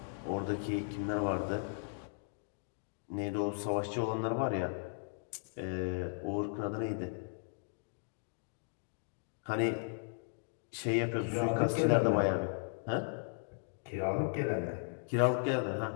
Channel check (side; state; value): right; silent; digital silence